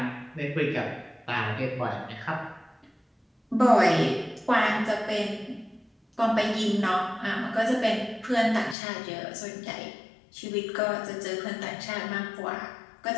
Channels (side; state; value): right; drops out; at 8.8 s